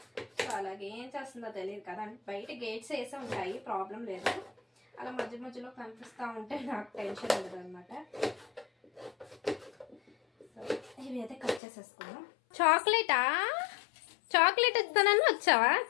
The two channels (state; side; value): drops out; right; at 11.6 s